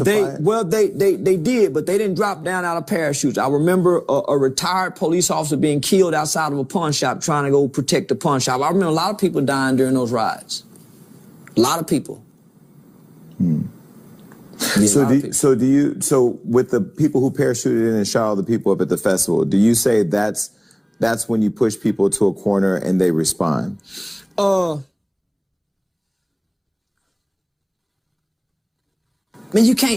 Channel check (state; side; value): identical; both; correlation 1.00